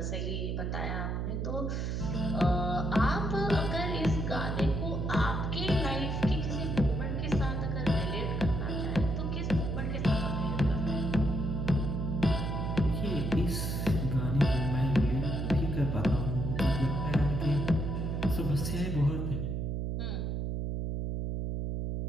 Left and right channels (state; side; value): noise; right; hum, 1 dB below the sound